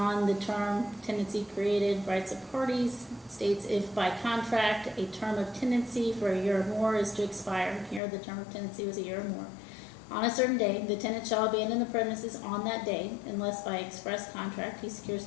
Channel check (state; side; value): drops out; right; at 8.0 s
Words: the term tenancy created rights of parties, states if by contract a term of tenancy for a year or more is to expire, here the term of tenancy was a year or more, on a certain day, the tenant shall abandon the premises on that day unless by express contract he secures